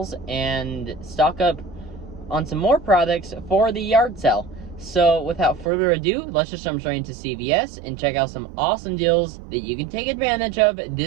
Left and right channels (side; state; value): left; drops out; at 5.7 s